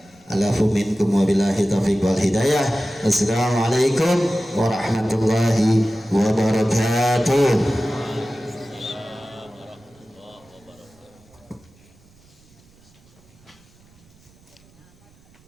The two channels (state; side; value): noise; right; rumble, 29 dB below the sound